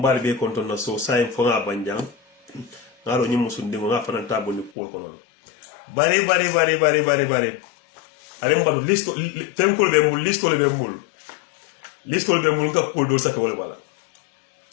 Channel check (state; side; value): drops out; right; at 4.7 s